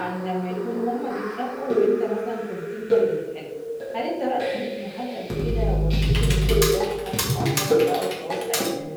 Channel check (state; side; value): identical; both; correlation 1.00